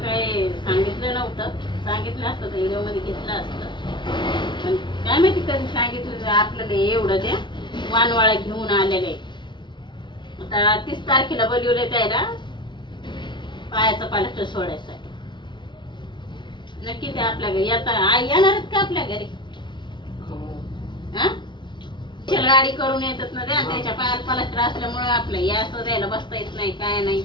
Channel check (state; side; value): late; right; 0.23 ms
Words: काही सांगितलं नव्हतं. सांगितलं असतं तर व्हिडिओ मध्ये घेतलं असतं, पण काय माहिती कधी सांगितलं आपल्याला. एवढं त्या वानवाळा घेऊन आलेले. आता 30 तारखेला बोलवले त्याला पायाचा प्लास्टर सोडायसाठी. नक्की ते आपल्या घरी आता आई येणार आहेत का आपल्या घरी? गाडी करून येतात ना त्या, त्याच्या पायात प्लास्टर असल्यामुळे आपलं या असं द्यायला बसता येत नाही, काय नाही,